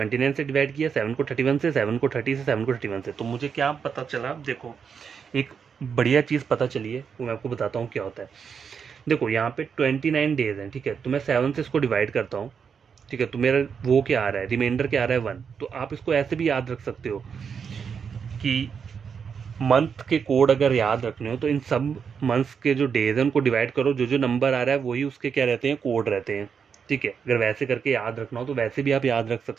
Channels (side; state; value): left; quieter; 6.6 dB